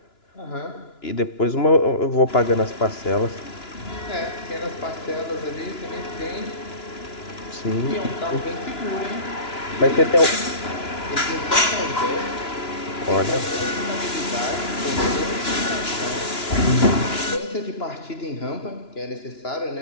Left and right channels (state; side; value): late; right; 2.9 ms